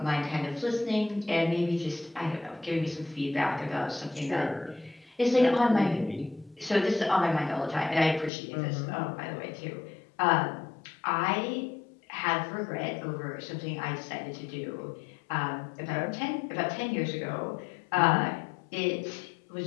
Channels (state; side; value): drops out; right; at 8.3 s